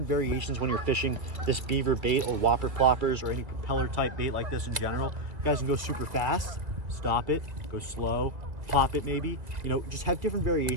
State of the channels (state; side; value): late; left; 1.8 ms